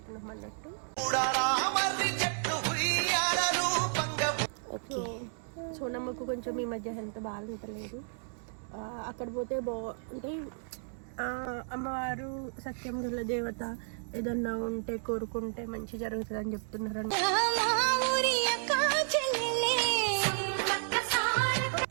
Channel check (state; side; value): silent; left; digital silence